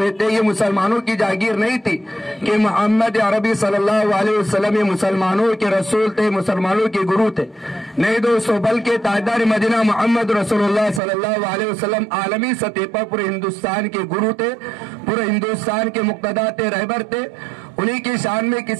थे, ये मुसलमानों की जागीर नहीं थी कि मोहम्मद अरबी सल्लल्लाहु अलैहि वसल्लम ये मुसलमानों के रसूल थे, मुसलमानों के गुरु थे। नहीं दोस्तों, बल्कि ताजदार मदीना मोहम्मद रसूलुल्लाह सल्लल्लाहु अलैहि वसल्लम आलमी सतह पर पूरे हिंदुस्तान के गुरु थे, पूरे हिंदुस्तान के मुक्तदा थे, रहबर थे। उन्हीं की शान में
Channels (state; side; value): drops out; left; at 11.0 s